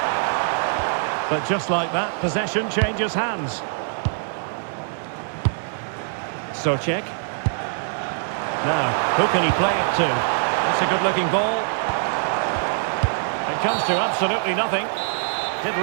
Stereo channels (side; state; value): left; silent; digital silence